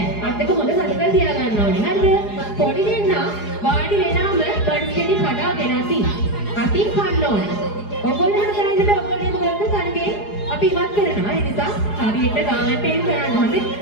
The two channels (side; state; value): right; late; 4.8 ms